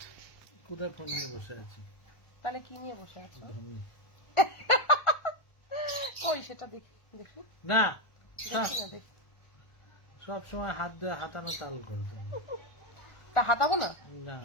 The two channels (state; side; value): late; right; 1.4 ms